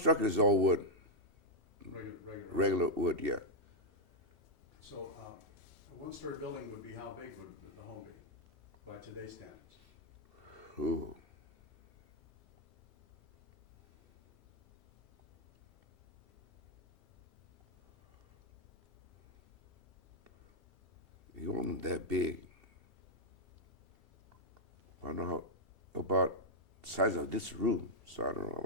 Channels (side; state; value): both; normal; correlation -0.02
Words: is all wood, regular wood, yeah. So a 1-story building would be, how big would the home be by today's standards? Ooh. It wasn't that big. I don't know about the size of this room, so I don't know